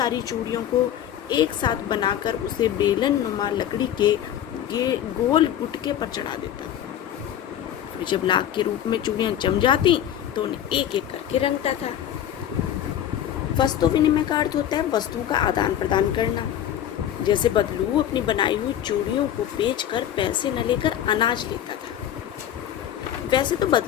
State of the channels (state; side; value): quieter; right; 10.7 dB